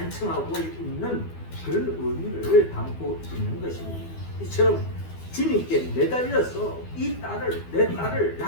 있는 그런 의미를 담고 있는 것입니다. 이처럼 주님께 매달려서 이 딸을, 내 딸을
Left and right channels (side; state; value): right; late; 12 ms